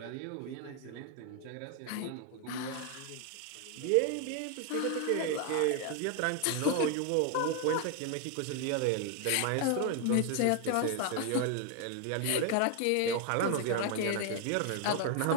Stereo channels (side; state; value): both; different; correlation 0.01